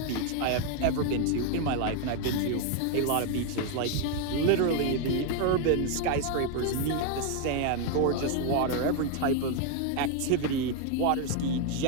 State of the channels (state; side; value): different; both; correlation 0.01